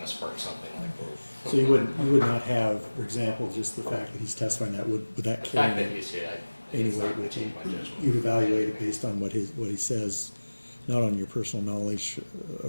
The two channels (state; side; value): inverted; both; correlation -1.00